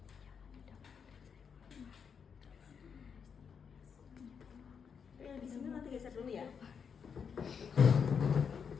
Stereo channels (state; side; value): quieter; right; 6.6 dB